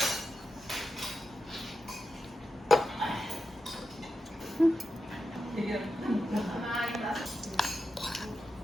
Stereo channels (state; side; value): normal; both; correlation 0.89